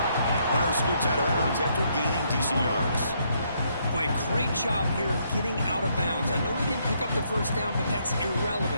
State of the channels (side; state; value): both; inverted; correlation -0.73